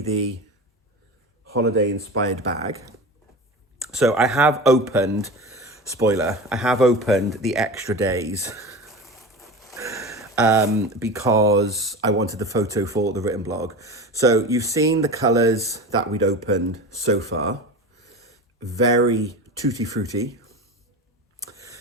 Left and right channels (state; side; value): normal; both; correlation 0.29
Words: the holiday inspired bag. So I have opened, spoiler, I have opened the extra days because I wanted the photo for the written blog. So you've seen the colours that we'd opened so far. Very tutti frutti.